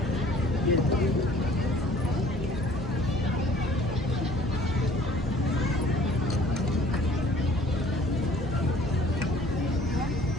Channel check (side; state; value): both; normal; correlation 0.54